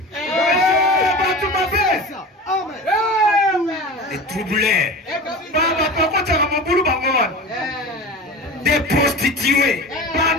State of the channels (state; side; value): normal; both; correlation 0.32